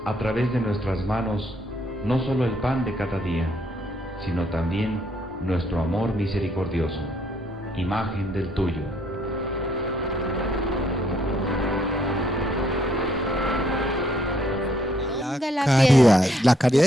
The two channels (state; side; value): normal; both; correlation 0.69